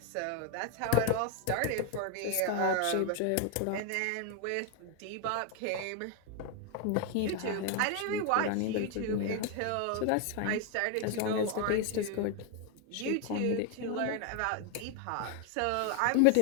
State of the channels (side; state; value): both; different; correlation 0.01